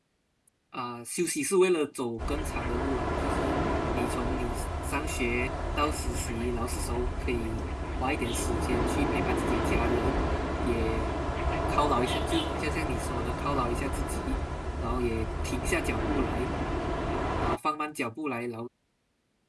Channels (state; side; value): identical; both; correlation 1.00